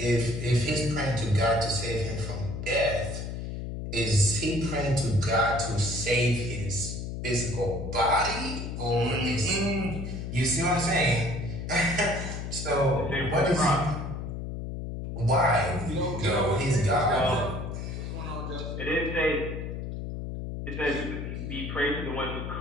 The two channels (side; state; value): left; noise; hum, 6 dB below the sound